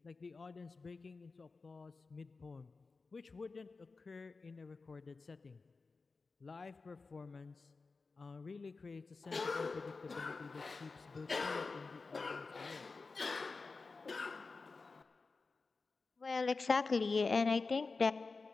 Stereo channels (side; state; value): right; quieter; 4.1 dB